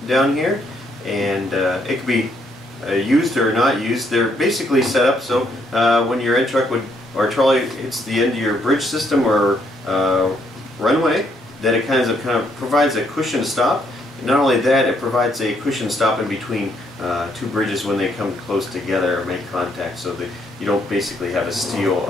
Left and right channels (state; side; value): normal; both; correlation 0.72